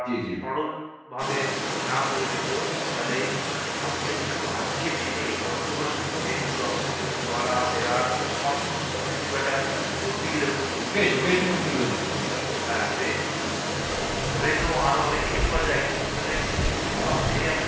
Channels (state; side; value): identical; both; correlation 1.00